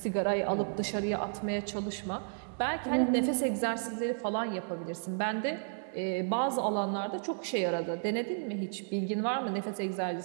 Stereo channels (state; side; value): silent; left; digital silence